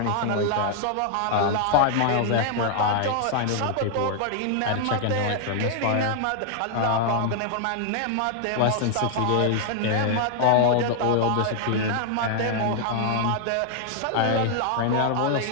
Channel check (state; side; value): different; both; correlation 0.00